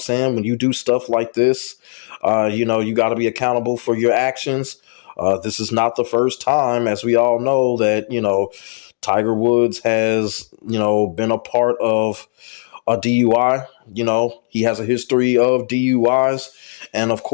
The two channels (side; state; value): right; silent; 67 dB below the other